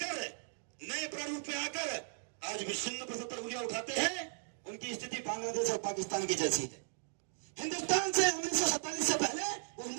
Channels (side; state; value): left; silent; digital silence